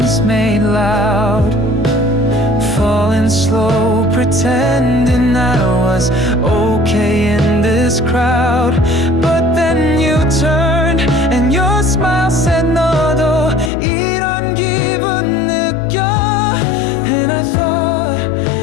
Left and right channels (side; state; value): right; drops out; at 13.7 s